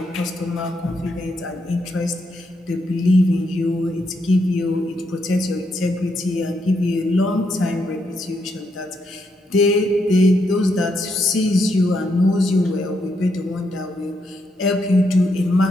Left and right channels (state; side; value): normal; both; correlation 0.79